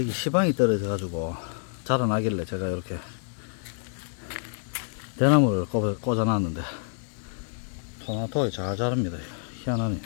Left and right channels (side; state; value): right; silent; 60 dB below the other